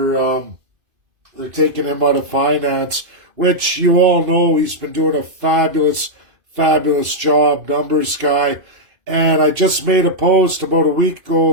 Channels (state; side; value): late; left; 2.5 ms